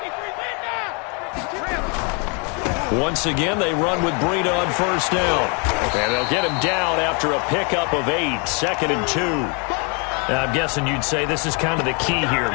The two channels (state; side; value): quieter; right; 34.6 dB